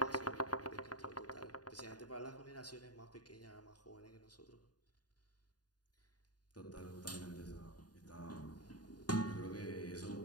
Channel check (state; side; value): late; right; 0.69 ms